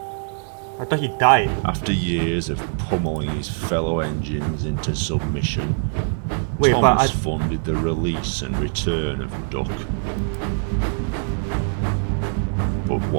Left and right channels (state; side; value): silent; left; digital silence